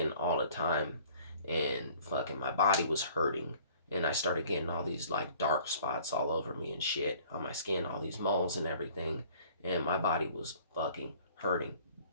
all the time, and fucking my body was hurting, and I started getting all these like dark spots all over me and shit on my skin, all these moles and everything, and my body was fucking hurting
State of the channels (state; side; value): inverted; both; correlation -0.52